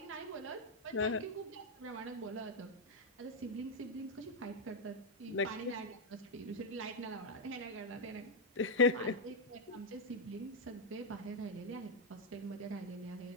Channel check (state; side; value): normal; both; correlation 0.00